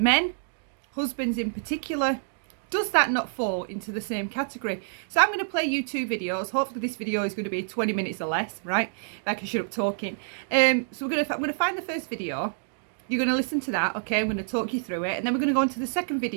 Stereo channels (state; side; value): silent; left; digital silence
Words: husbands in particular, does that not fall into the same category? So I'm going to play you two videos. Hopefully this video is going to be 20 minutes or less, right? Like I shut up talking. So I'm going to find the first video. You're going to listen to that, okay? I'm going to talk you through it. And then we're going to go into the second